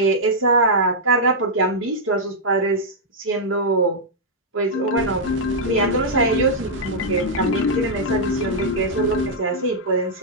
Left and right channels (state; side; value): normal; both; correlation -0.06